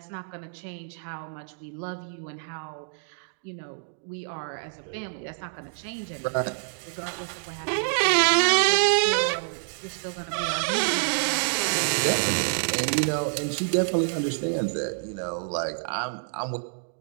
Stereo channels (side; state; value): left; silent; digital silence